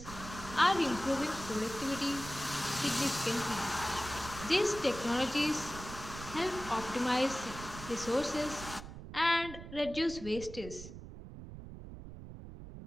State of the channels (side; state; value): right; noise; rumble, 12 dB below the sound